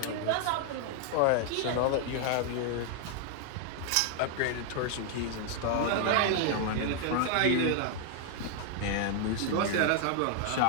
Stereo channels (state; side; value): different; both; correlation 0.00